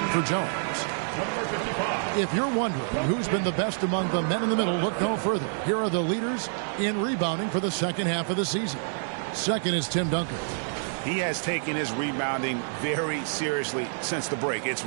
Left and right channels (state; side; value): silent; left; digital silence